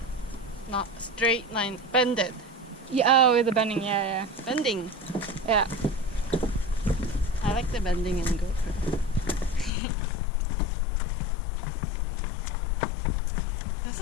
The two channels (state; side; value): drops out; right; at 9.7 s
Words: Not straight line. Bended. Yeah, oh, the bending. Yeah, yeah. Bending. Yeah. I like the bending in GoPro. This